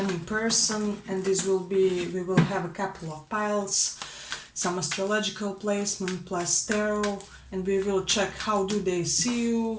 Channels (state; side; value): identical; both; correlation 1.00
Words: person, and we will have a couple of piles, some astrological placement plus tarot, and we will check how do they see